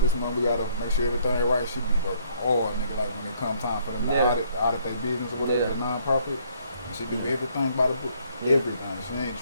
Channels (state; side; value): inverted; both; correlation -0.66